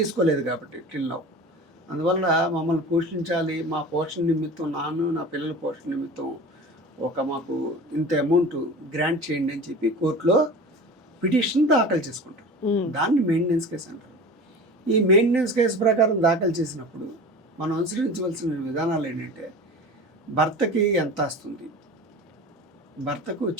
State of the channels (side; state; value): both; normal; correlation 0.35